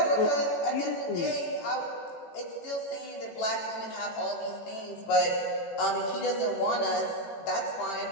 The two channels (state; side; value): late; right; 18 ms